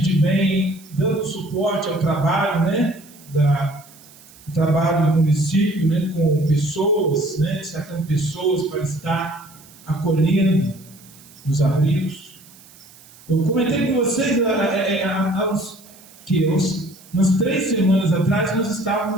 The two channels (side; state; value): right; noise; hiss, 24 dB below the sound